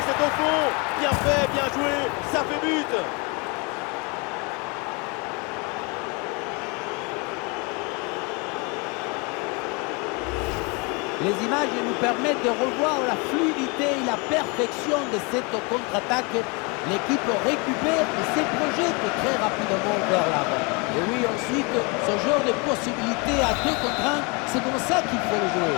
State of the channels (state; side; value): quieter; right; 30.5 dB